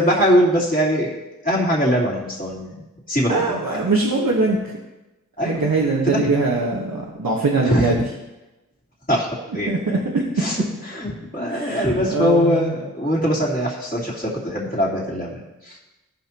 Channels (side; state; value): both; normal; correlation 0.43